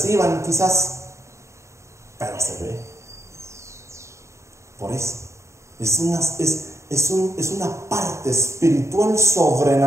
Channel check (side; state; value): left; late; 0.14 ms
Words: quizás, pero se ve. Por eso, es una parte espiritual